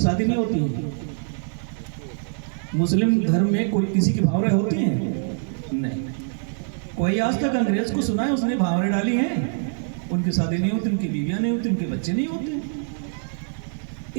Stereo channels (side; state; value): left; silent; digital silence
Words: नहीं होती है। मुस्लिम धर्म में कोई किसी की भावरे होती हैं? नहीं। कोई आज तक अंग्रेज को सुना है उसने भावरे डाली हैं? उनकी शादी नहीं होती, उनकी बीवियां नहीं होती, उनके बच्चे नहीं होते।